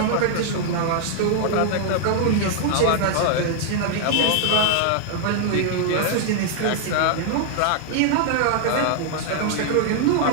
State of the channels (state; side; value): different; both; correlation 0.00